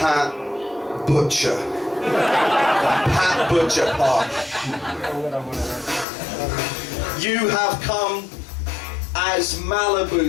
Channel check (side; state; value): right; drops out; at 6.1 s